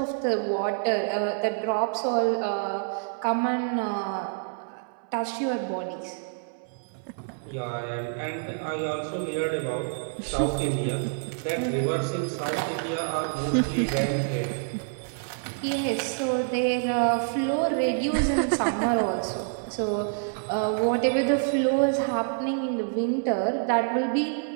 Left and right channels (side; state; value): left; silent; 60 dB below the other